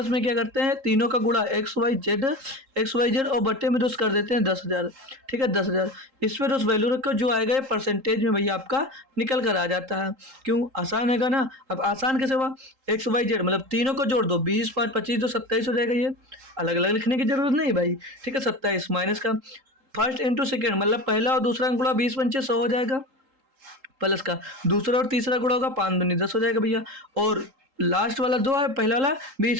में क्या करते हैं तीनों का गुणा एक्स वाई जेड और बटे में 2 कर देते हैं 10,000। ठीक है 10,000, इस पर उस वैल्यू रखो, जो आएगा ये परसेंटेज में भैया आपका निकल कर आ जाता है। क्यों, आसान हैगा ना। अब आसान कैसे हुआ, एक्स वाई जेड मतलब तीनों को जोड़ दो, 20 5 25 जो 27 हो जाएगा। ये अलग अलग लिखने की जरूरत नहीं भाई। ठीक है 27 माइनस का फर्स्ट इंटू सेकेंड, मतलब पहला और दूसरा गुणा 20 पंचे 100 हो जाएगा, प्लस का दूसरा और तीसरा गुणा होगा 5 दूनी 10 हो जाएगा भैया, और लास्ट वाला 2 है, पहला वाला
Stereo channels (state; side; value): late; left; 3.8 ms